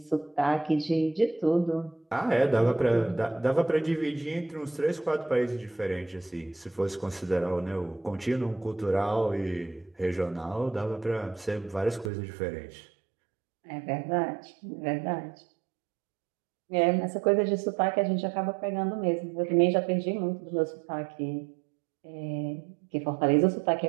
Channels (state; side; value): drops out; left; at 12.1 s